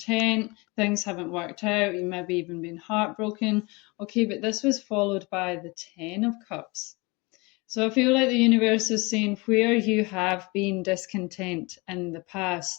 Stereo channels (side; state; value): right; quieter; 26.3 dB